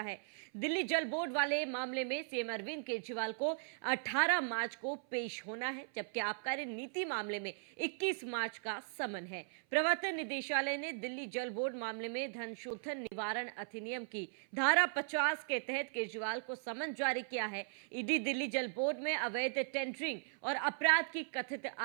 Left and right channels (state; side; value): silent; left; 52 dB below the other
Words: दिल्ली जल बोर्ड वाले मामले में सीएम अरविंद केजरीवाल को 18 मार्च को पेश होना है, जबकि आबकारी नीति मामले में 21 मार्च का समन है। प्रवर्तन निदेशालय ने दिल्ली जल बोर्ड मामले में धन शोधन निवारण अधिनियम की धारा 50 के तहत केजरीवाल को समन जारी किया है। ईडी दिल्ली जल बोर्ड में अवैध टेंडरिंग और अपराध की कथित